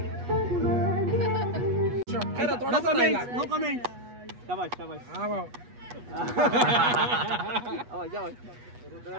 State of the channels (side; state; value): left; late; 8.2 ms